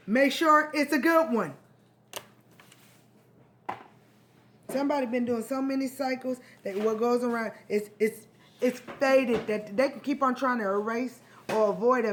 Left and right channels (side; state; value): both; identical; correlation 1.00